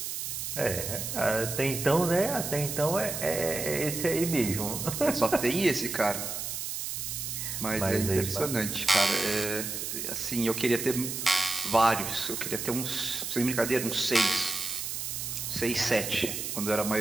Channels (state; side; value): noise; right; hiss, 4 dB below the sound